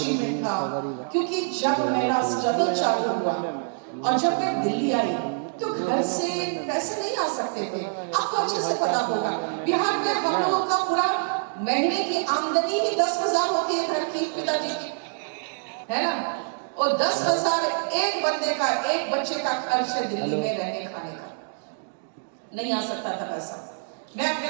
था, क्योंकि जब मेरा स्ट्रगल चालू हुआ और जब मैं दिल्ली आई तो घर से पैसे नहीं आ सकते थे। आपको अच्छे से पता होगा बिहार में हम लोगों का पूरा महीने की आमदनी ही 10,000 होती है घर की, पिताजी की, है ना। और 10,000 एक बंदे का, एक बच्चे का खर्च है दिल्ली में रहने खाने का, नहीं आ सकता था पैसा। मैं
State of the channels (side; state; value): left; silent; digital silence